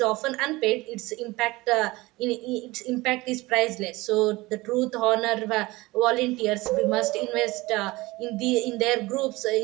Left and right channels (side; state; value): left; quieter; 21.0 dB